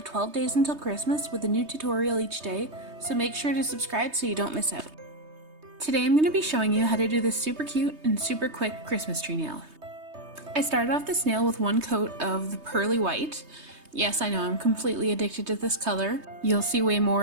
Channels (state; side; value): late; left; 3.2 ms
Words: 12 days until Christmas with a new tutorial each day, so make sure to subscribe so you don't miss out. Today I'm going to be showing you how to do this super cute and super quick Christmas tree nail. I started off this nail with one coat of the pearly white. Yes, I know, I'm completely addicted to this color. You'll see way